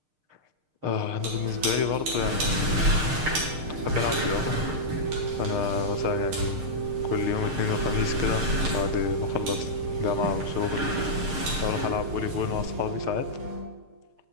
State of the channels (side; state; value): left; late; 6.6 ms